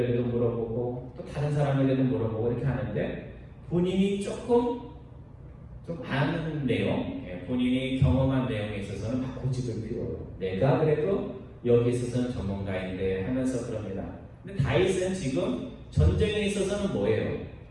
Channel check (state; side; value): identical; both; correlation 1.00